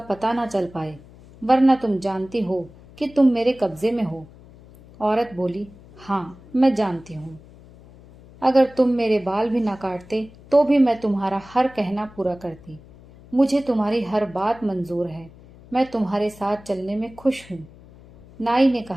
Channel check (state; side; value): noise; left; hum, 22 dB below the sound